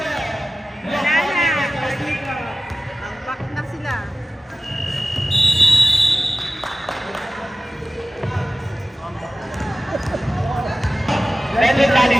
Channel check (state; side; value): normal; both; correlation 0.96